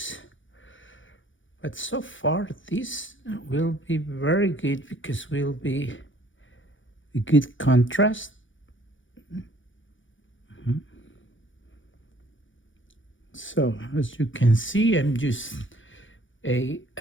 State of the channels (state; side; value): late; right; 0.56 ms